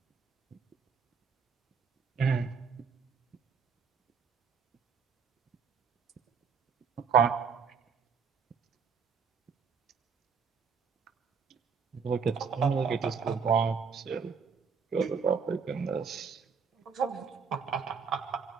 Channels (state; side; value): quieter; left; 6.0 dB